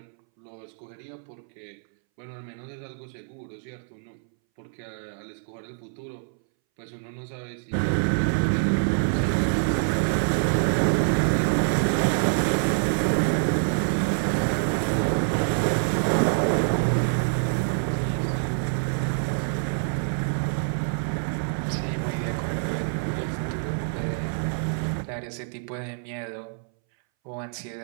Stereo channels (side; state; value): left; silent; 61 dB below the other